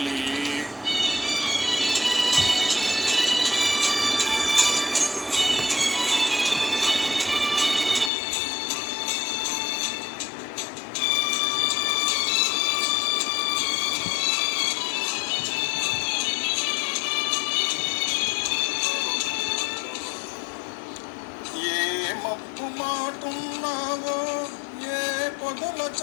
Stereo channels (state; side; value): drops out; right; at 8.1 s